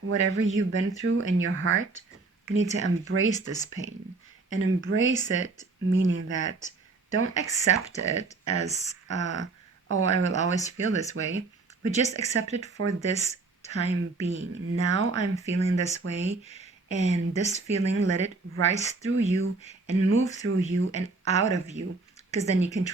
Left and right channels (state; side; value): quieter; left; 3.8 dB